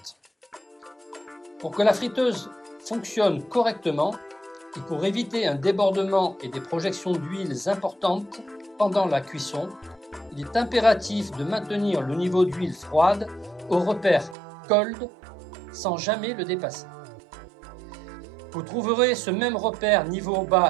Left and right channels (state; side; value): drops out; left; at 14.4 s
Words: Pour que la friteuse fonctionne correctement et pour éviter un débordement et des projections d'huiles importantes pendant la cuisson, il est impératif de maintenir le niveau d'huile froide au repère cold sans jamais le dépasser. Vous trouverez ce même repère niveau